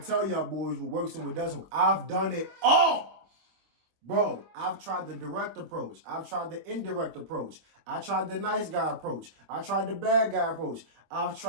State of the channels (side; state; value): left; late; 25 ms